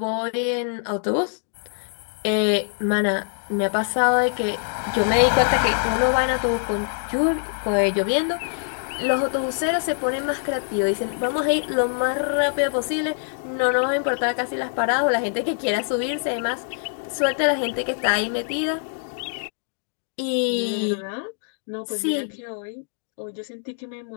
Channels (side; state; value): right; silent; digital silence